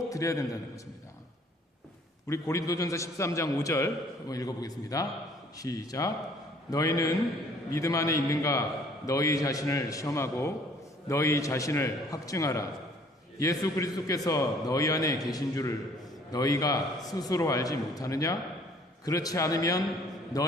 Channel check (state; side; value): normal; both; correlation 0.57